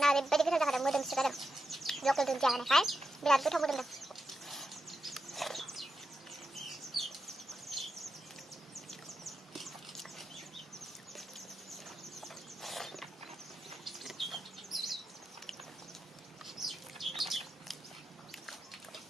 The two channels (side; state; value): both; normal; correlation 0.88